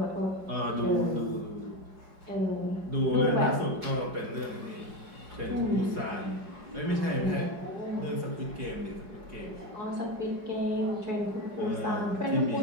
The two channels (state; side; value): late; left; 4.9 ms